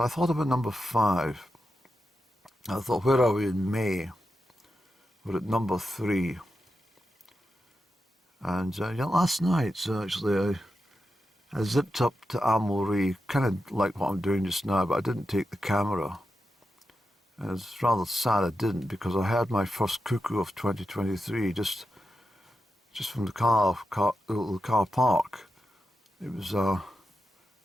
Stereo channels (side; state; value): both; normal; correlation 0.89